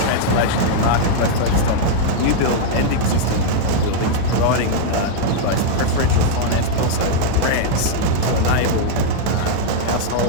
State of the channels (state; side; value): different; both; correlation -0.01